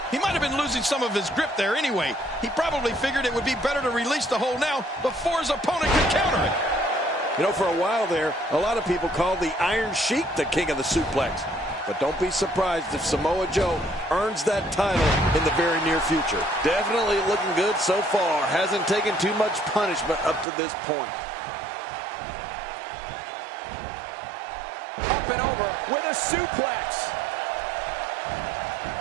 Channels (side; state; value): left; drops out; at 20.5 s